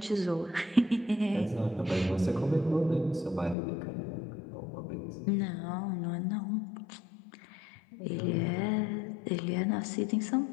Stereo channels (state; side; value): drops out; right; at 3.6 s